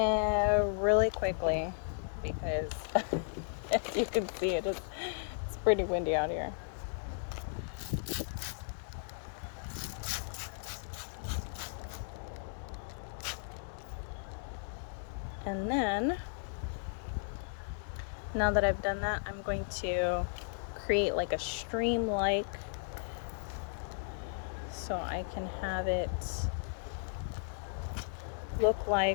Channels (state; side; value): silent; right; digital silence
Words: quickly, because as you can see, it's pretty windy out here. And then, now that I've done that, I'm going to create like a stream-like, so I can have it look